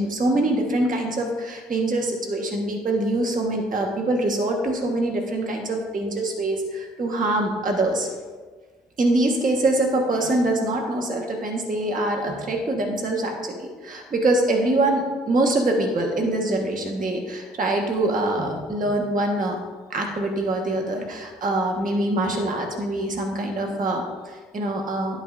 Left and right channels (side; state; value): both; normal; correlation 0.60